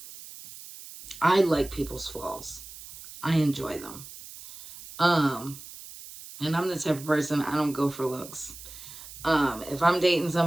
I like people's flaws. I enjoy them. And I'm the type of person, I don't go for looks. If I'm dating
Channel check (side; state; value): right; noise; hiss, 15 dB below the sound